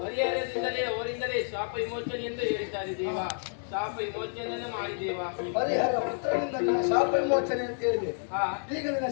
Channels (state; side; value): silent; right; digital silence